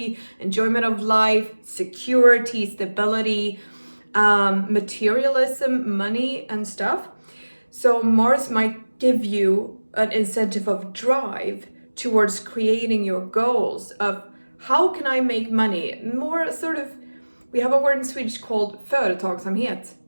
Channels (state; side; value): inverted; both; correlation -1.00